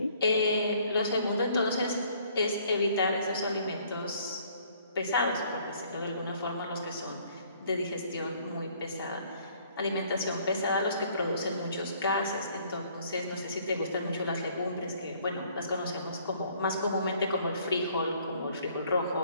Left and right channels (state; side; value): inverted; both; correlation -0.61